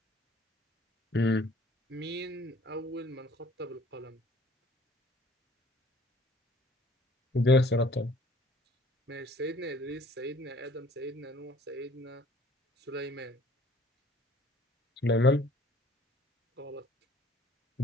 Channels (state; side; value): normal; both; correlation 0.55